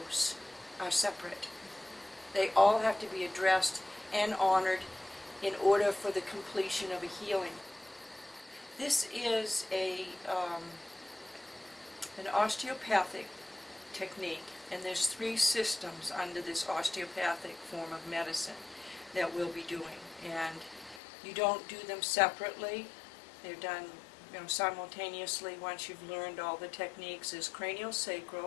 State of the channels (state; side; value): drops out; right; at 21.0 s